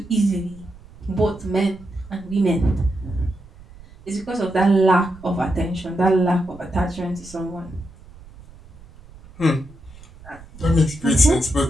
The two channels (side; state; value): right; noise; rumble, 21 dB below the sound